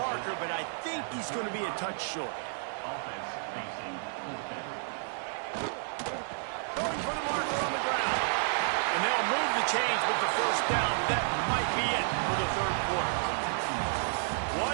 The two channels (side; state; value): left; silent; digital silence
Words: but I think he's going to be a touch short. Offense facing fourth down. Going for the marker on the ground. And they'll move the chains with the first down. That might be it for the 3rd quarter.